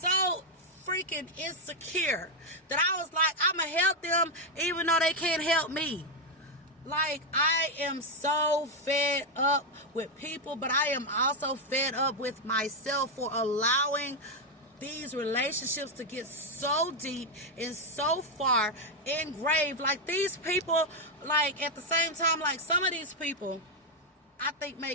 freaking insecure that I was like, I'm gonna help them even though they can't help me? Like, I am so fed up with people, but I am also fed up with myself for allowing these relationships to get so deep and so far engraved. Like, these people, like, at the same time, like, some of these people I think may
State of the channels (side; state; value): both; normal; correlation 0.03